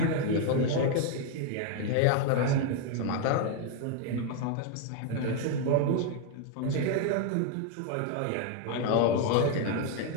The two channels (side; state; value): both; different; correlation 0.01